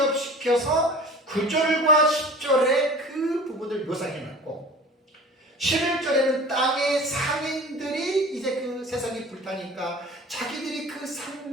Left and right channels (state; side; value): normal; both; correlation 0.41